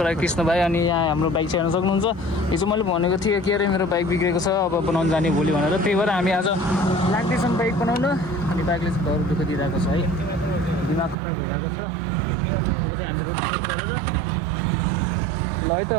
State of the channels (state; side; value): drops out; left; at 11.2 s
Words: कृष्ण भाइ। अनि यहाँ हाम्रो बाइक चाहिँ हेर्न सक्नुहुन्छ। हिजो मैले भनेको थिएँ के अरे मेरो बाइक बिग्रेको छ, अब बनाउनु जाने भोलि भनेर। त्यही भएर हामी आज लाग्दैछौँ बाइक बनाउन। अनि बाइकले चाहिँ घर दुःख दिइरहेको छ है, दिमाग खराब भइरहेको छ। अब चाहिँ हामी रोड गरेर ल है त